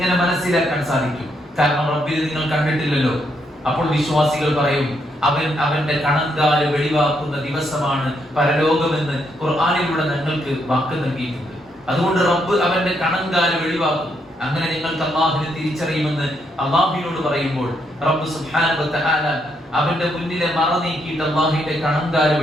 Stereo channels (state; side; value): normal; both; correlation 0.76